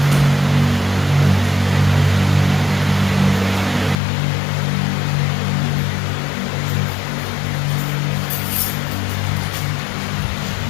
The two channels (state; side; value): drops out; right; at 4.0 s